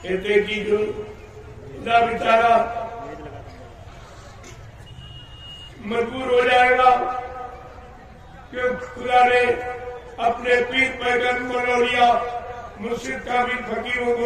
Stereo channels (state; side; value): identical; both; correlation 1.00